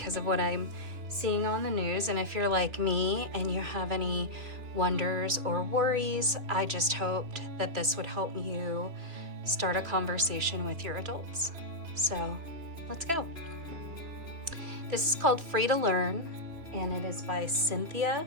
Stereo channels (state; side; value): late; left; 3.0 ms